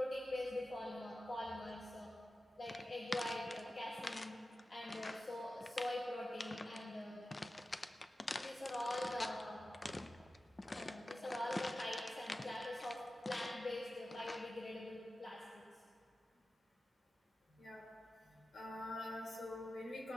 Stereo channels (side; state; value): both; normal; correlation 0.94